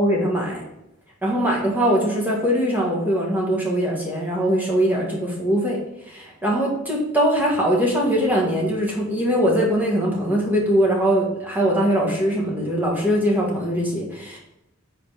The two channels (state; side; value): normal; both; correlation 0.51